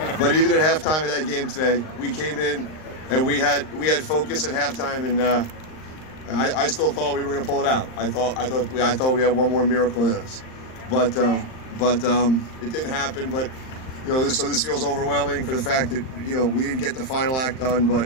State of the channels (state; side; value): late; right; 38 ms